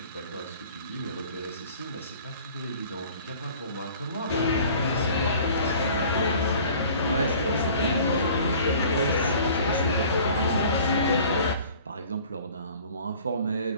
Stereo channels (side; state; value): both; inverted; correlation -0.49